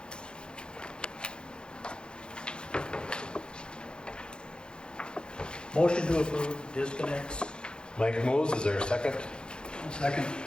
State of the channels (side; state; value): right; late; 0.050 ms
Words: Motion to approve disconnects. Mike moves, is there a second? Second.